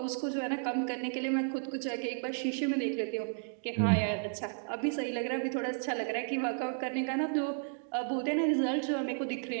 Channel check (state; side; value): silent; left; 56 dB below the other